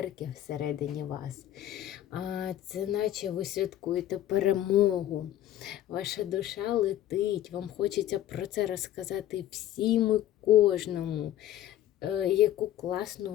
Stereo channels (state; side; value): quieter; right; 12.5 dB